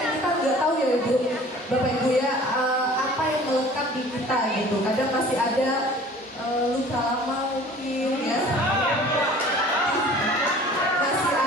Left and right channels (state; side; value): normal; both; correlation 0.47